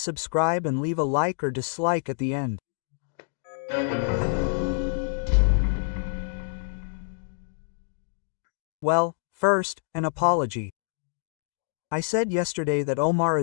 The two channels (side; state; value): right; silent; digital silence